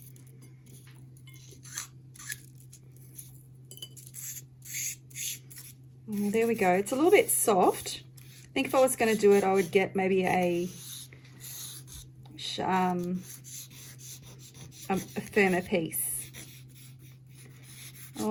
Oh, there we go. It's a little bit soft, think if I was going to do it, I would get maybe a firmer piece.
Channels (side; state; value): both; identical; correlation 1.00